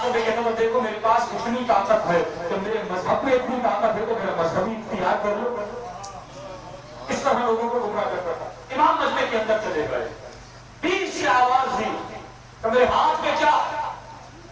نے کہتا ہوں دیکھو میرے پاس اتنی طاقت ہے تو میرے مذہب میں اتنی طاقت ہے تو میرا مذہبی اختیار کر لو. اس طرح لوگوں کو گمراہ کرتا تھا. امام مجمع کے اندر چلے گئے، بیچ سے آواز دی کہ میرے ہاتھ میں کیا ہے؟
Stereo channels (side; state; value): both; identical; correlation 1.00